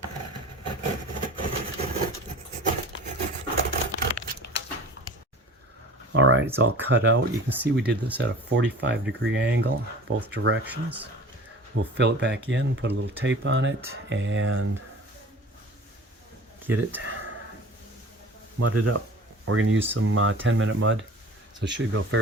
All right, it's all cut out. You can see we did this at a 45-degree angle, both directions. We'll fill it back in, put a little tape on it, and get it mudded up. We're going to use some 10-minute mud, so it should go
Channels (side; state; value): both; normal; correlation 0.41